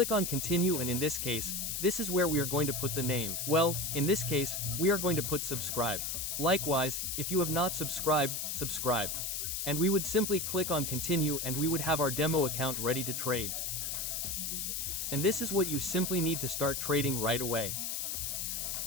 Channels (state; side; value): noise; left; hiss, 2 dB below the sound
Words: on continue, and in this case, this is where we are going to put the name. Well, in this case, we are going to put subscribe. Likewise, if you have not subscribed, subscribe. And we would simply click on continue, and we would have our demo account ready to trade. And this is what you simply need to start trading right away.